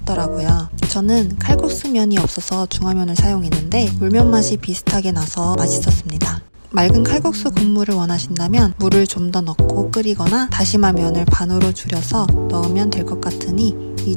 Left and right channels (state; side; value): inverted; both; correlation -1.00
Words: 저는 칼국수면이 없어서 중화면을 사용했는데 물면 맛이 비슷하게 나서 맛있었습니다. 맑은 칼국수 국물을 원하신다면 물을 좀 더 넣고 끓이거나 다시마 면을 반으로 줄여서 넣으면 될 것 같으니 이